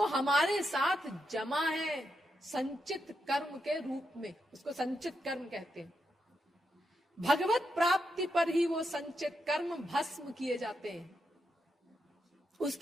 हमारे साथ जमा है संचित कर्म के रूप में। उसको संचित कर्म कहते हैं। भगवत प्राप्ति पर ही वो संचित कर्म भस्म किए जाते हैं।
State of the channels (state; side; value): normal; both; correlation 0.84